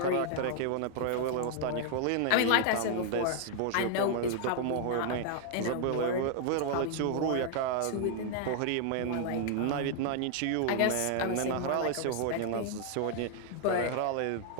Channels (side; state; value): both; different; correlation 0.00